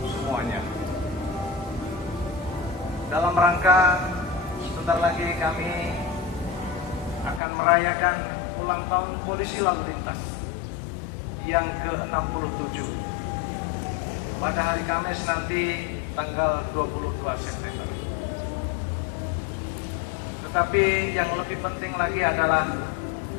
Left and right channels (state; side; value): drops out; right; at 7.4 s